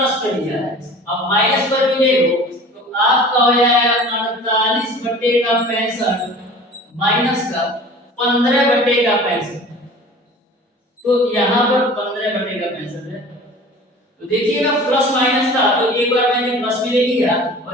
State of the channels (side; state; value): both; normal; correlation 0.42